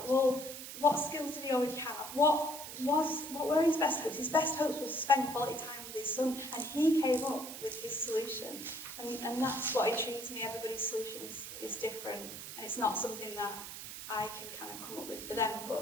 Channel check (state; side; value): noise; right; hiss, 10 dB below the sound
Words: well, what skills did he already have? What what were his best hopes? His best hopes was to spend quality time with his son, and he came up with his solution. And that's what intrigues me. Everybody's solution is different, and it's not something that I can kind of come up with for them,